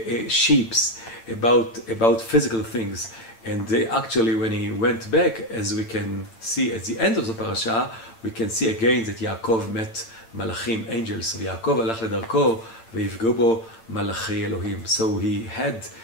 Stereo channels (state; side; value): late; right; 8.8 ms